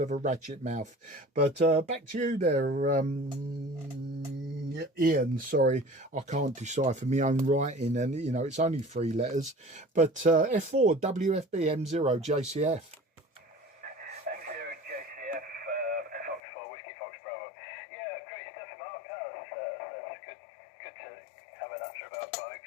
a ratchet mouth. But back to you there, Ian. Sorry, I can't decipher my own writing, and you know, it's only 3 letters. But F4WFB M0 JCF.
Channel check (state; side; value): drops out; right; at 16.4 s